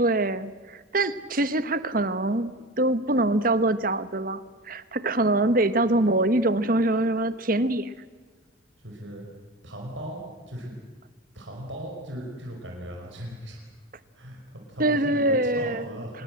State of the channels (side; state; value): both; normal; correlation 0.28